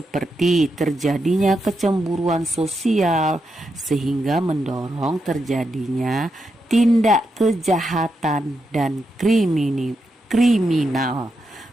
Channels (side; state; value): both; normal; correlation 0.84